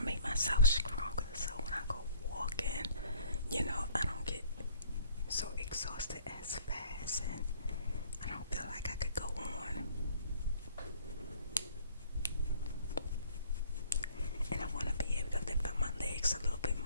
make myself stronger so when I go walking, I don't get so exhausted as fast and I don't feel like I could go on. And I want to be able to lift up my legs a little bit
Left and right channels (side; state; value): both; inverted; correlation -0.56